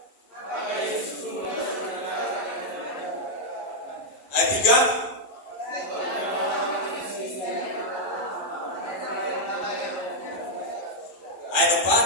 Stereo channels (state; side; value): late; right; 11 ms